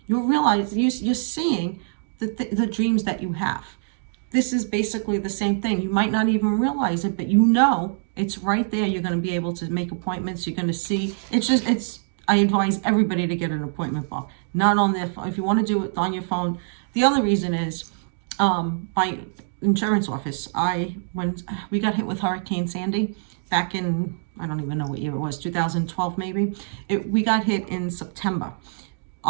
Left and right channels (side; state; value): left; silent; digital silence